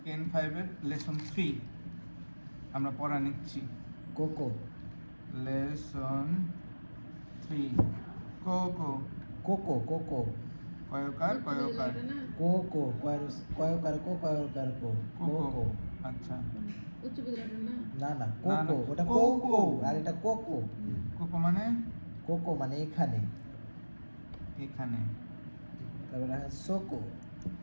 N5 এর lesson 3 আমরা পড়া নিচ্ছি। কোকো লেসন 3 কোকো কোকো কোকো কয়কার কয়কার কোকো কয়কার কো কোকো। আচ্ছা উচ্চ বিদ্যালয়টা না না না না, কোকো না, ওটা কোকো। কোকো আর এটা কোকো কোকো মানে কোকো মানে এখানে, এখানে। তারপরে সোকো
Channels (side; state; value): both; inverted; correlation -1.00